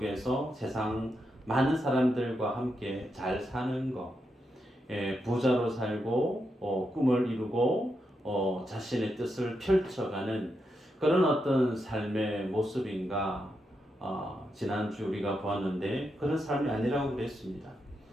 세상 많은 사람들과 함께 잘 사는 것, 부자로 살고 꿈을 이루고 자신의 뜻을 펼쳐가는 그런 어떤 삶의 모습인가? 지난주 우리가 보았는데 그런 삶이 아니라고 그랬습니다.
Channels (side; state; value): both; normal; correlation 0.84